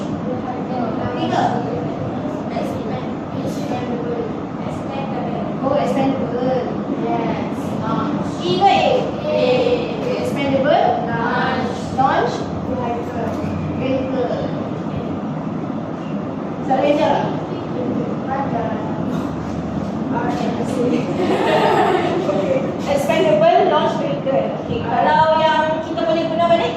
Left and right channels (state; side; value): identical; both; correlation 1.00